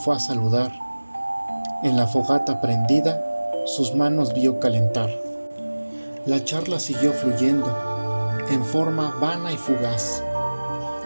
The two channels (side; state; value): both; inverted; correlation -1.00